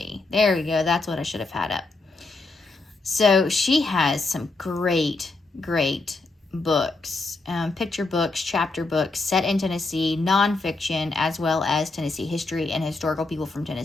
There we go. That's what I should have had up. So she has some great books, picture books, chapter books set in Tennessee, nonfiction, as well as Tennessee history and historical people from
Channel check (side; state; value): right; quieter; 3.4 dB